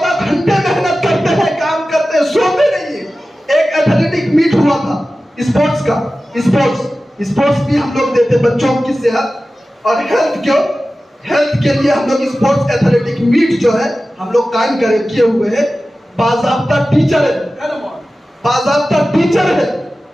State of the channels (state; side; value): normal; both; correlation 0.95